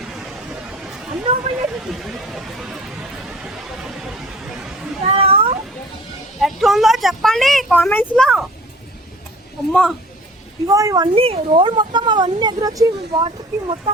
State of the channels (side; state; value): both; normal; correlation 0.47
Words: ఎట్లుందో చెప్పండి కామెంట్స్ లో. అమ్మా ఇగో ఇవన్నీ రోడ్ మొత్తం అవన్నీ ఎదురొచ్చి వాటర్కి